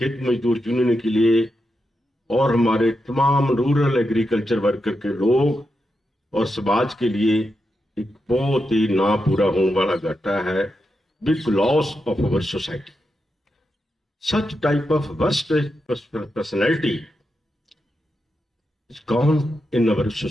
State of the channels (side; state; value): both; normal; correlation 0.86